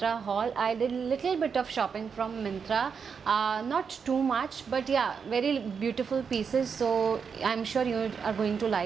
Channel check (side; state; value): left; quieter; 6.2 dB